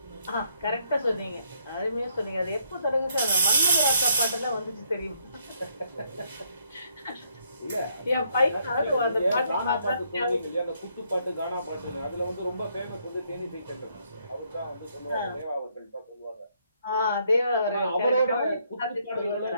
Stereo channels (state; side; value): inverted; both; correlation -0.71